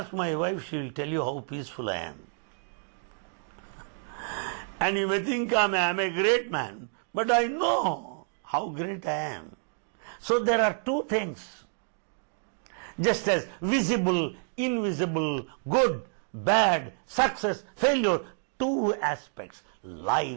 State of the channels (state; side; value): silent; left; 59 dB below the other